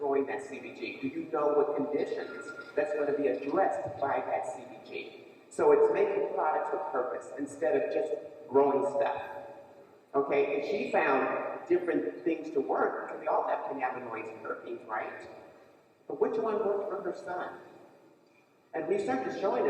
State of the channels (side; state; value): both; identical; correlation 1.00